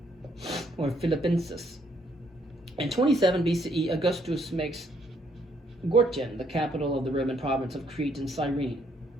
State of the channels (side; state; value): both; normal; correlation 0.69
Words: or Philippensis. In 27 BCE, Augustus makes Gortyn the capital of the Roman province of Crete and Cyrene.